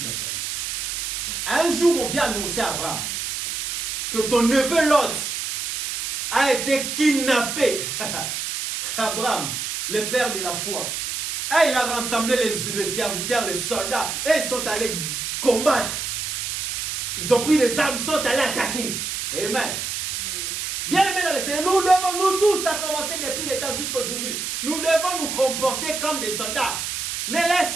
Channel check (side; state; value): right; noise; hiss, 3 dB below the sound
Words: sa vie. Un jour, on vient annoncer à Abraham que ton neveu Lot a été kidnappé. Abraham, le père de la foi. Et il a rassemblé les serviteurs, les soldats, et ils sont allés combattre. Ils ont pris les armes, ils sont allés attaquer. Amen. Bien aimés dans le Seigneur, nous tous, ça a commencé depuis le temps jusqu'à aujourd'hui. Nous devons nous comporter comme des soldats. Ne